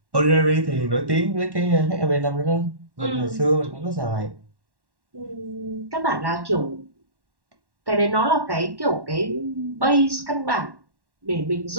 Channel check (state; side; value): late; left; 1.1 ms